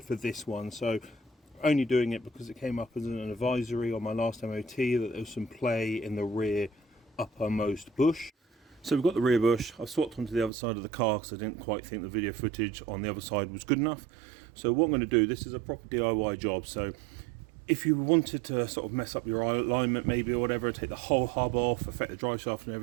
for this one. So only doing it because it came up as an advisory on my last MOT that there was some play in the rear uppermost bush. So we've got the rear bush. I've swapped onto the other side of the car because I didn't quite think the video footage on the other side was good enough. So what I'm going to do, this is a proper DIY job. So if you wanted to sort of mess up your alignment maybe or whatever, take the whole hub off, affect the drive shaft and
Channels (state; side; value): drops out; left; at 10.5 s